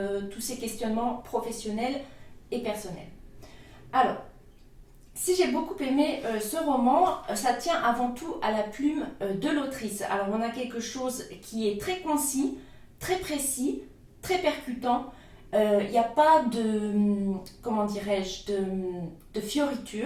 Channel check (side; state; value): both; identical; correlation 1.00